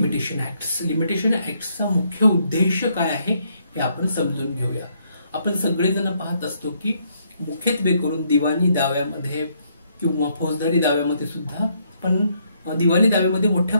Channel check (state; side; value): inverted; both; correlation -0.72